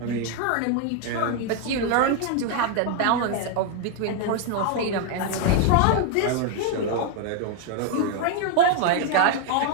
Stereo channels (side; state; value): both; different; correlation 0.01